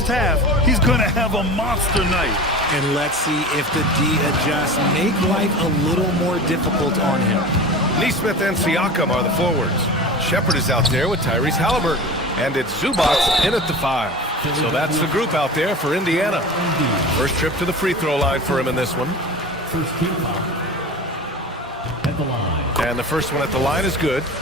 half, he's gonna have a monster night. And let's see if the D adjusts, make life a little more difficult on him. Nesmith and Siakam are the forwards. Shepard is out there with Tyrese Halliburton. And it's Zubac in at the 5. So that's the group out there for Indiana. First trip to the free throw line for him in this one. First team foul at the line. And the first one at the line is good.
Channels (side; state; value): both; normal; correlation 0.34